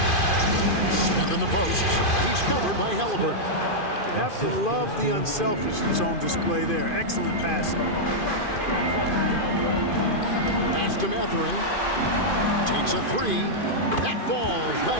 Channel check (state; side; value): late; right; 2.4 ms